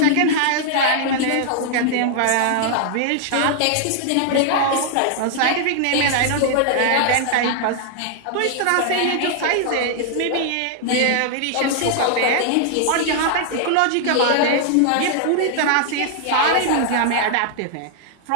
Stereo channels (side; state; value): both; different; correlation -0.01